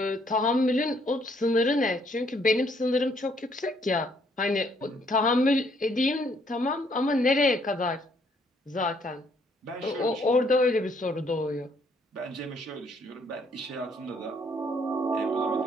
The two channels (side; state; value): both; normal; correlation 0.67